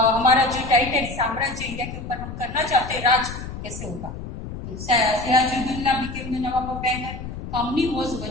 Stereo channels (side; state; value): left; noise; rumble, 9 dB below the sound